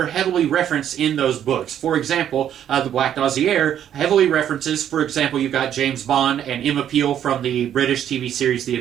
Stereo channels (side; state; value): left; quieter; 10.1 dB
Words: heavily referenced in those books. For example, the Black Dossier heavily references, for example, you've got James Bond and Emma Peel from the British TV series The